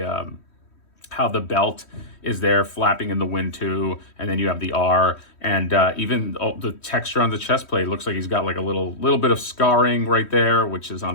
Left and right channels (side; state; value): right; late; 3.1 ms